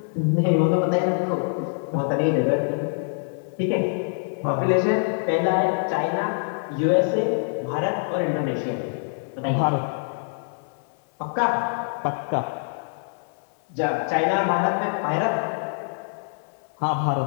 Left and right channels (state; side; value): silent; right; 60 dB below the other